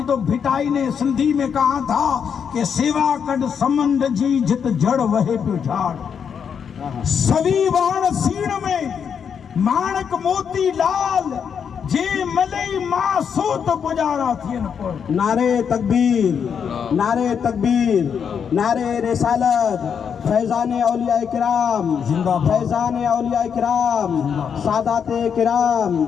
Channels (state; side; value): quieter; right; 7.2 dB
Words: تو بھٹائی نے سندھی میں کہا تھا کہ سیوا کڈ سمند جی جت جڑ وہے پہ جھاڑ، سوی وان سین میں مانک موتی لال، جے ملئی ماں سوت گزارا تھین پر۔ نعرے تکبیر، نعرے تکبیر، نعرے رسالت، فیضان اولیاء کرام، فیضان اولیاء کرام، سادات کرام،